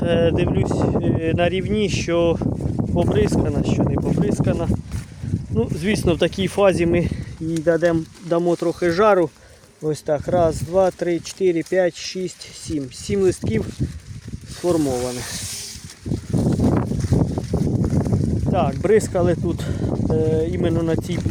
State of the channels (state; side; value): identical; both; correlation 1.00